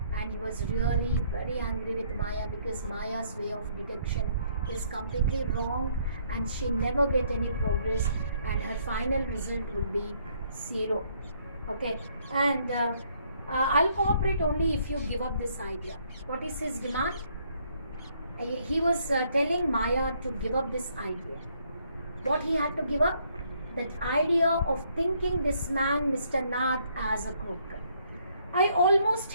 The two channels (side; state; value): both; inverted; correlation -0.68